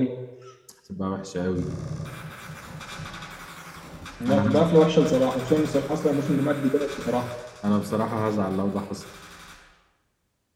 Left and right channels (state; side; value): identical; both; correlation 1.00